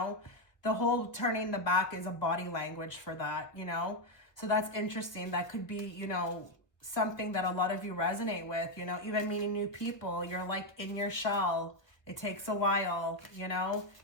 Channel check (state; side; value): late; right; 1.1 ms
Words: The whole turning the back is a body language for that, you know. So that's interesting. That could be, you know, something that a lot of you resonate with, you know, even meeting new people. You're like in your shell. It takes a while, you know.